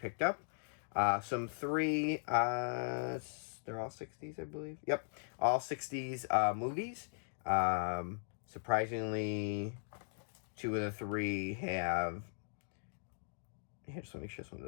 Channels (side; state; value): right; silent; digital silence